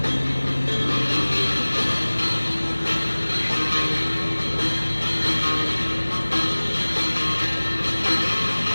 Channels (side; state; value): both; inverted; correlation -1.00